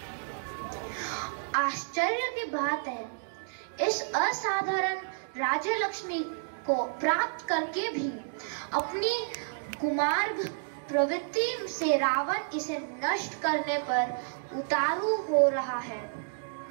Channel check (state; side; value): silent; left; digital silence